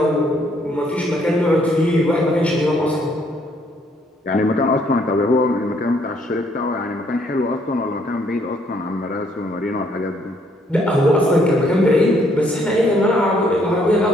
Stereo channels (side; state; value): both; normal; correlation 0.68